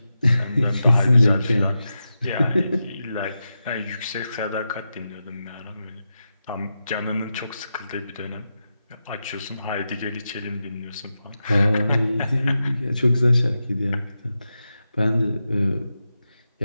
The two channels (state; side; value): inverted; both; correlation -0.90